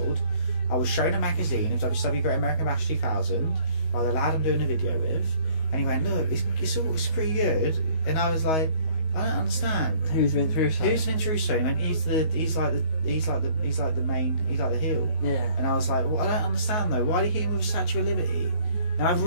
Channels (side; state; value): right; late; 19 ms